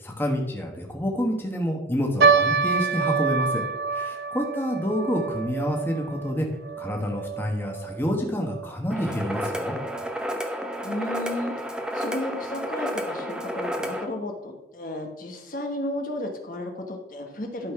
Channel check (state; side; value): normal; both; correlation 0.42